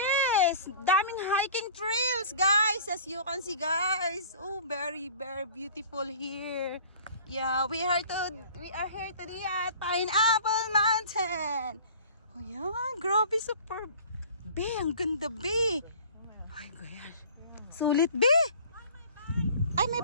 Daming hiking trails, guys. As you can see, guys. Oh, very, very beautiful here. Yeah, we are here today at Pineapple Mountain. Oh, yan. Grabe, super. Be, ang ganda, be. Ay, gosh. Sulit, be. Ay, may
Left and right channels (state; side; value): inverted; both; correlation -0.46